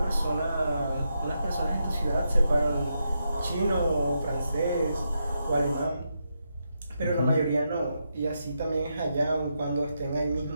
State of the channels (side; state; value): both; inverted; correlation -0.84